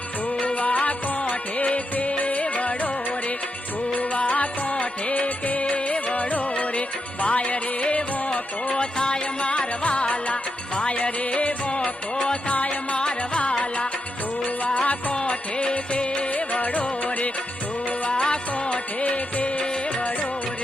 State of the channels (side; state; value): both; normal; correlation 0.85